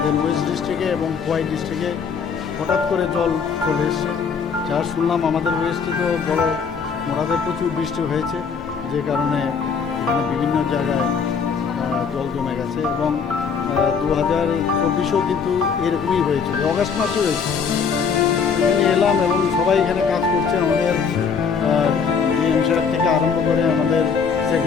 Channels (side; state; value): right; quieter; 6.0 dB